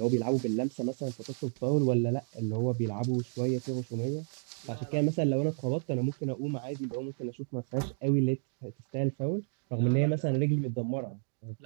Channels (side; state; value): left; silent; digital silence